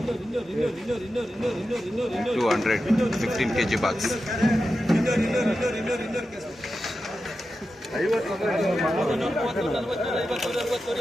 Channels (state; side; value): normal; both; correlation 0.91